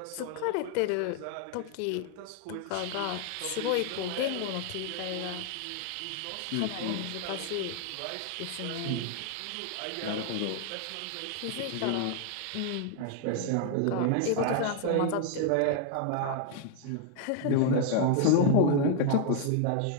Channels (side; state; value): both; different; correlation 0.00